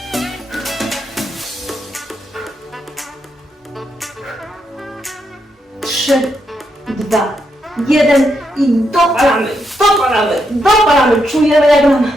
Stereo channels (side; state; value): both; normal; correlation 0.80